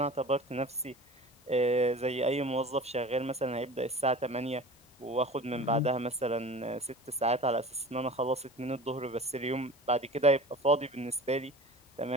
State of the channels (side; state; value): both; normal; correlation 0.38